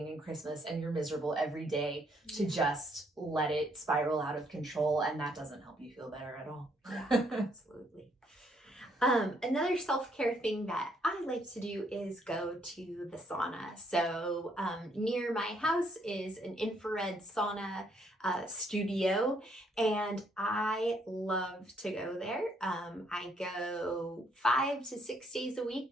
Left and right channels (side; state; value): both; normal; correlation 0.70